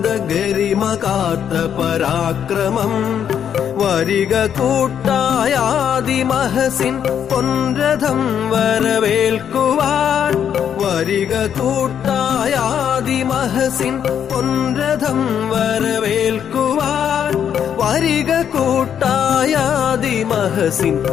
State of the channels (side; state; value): right; quieter; 8.7 dB